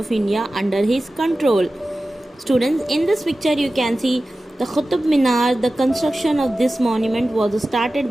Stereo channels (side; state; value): both; normal; correlation 0.95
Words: India under his control. Students, in this picture you can see the Qutub Minar. The construction of this monument was started